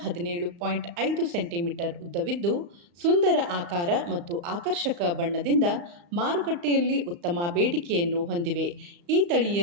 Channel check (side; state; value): left; late; 35 ms